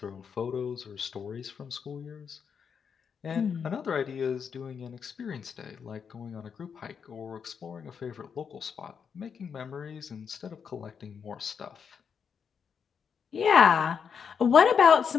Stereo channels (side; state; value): right; quieter; 6.7 dB